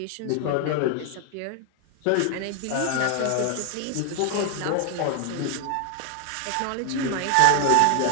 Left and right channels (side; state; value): both; different; correlation 0.00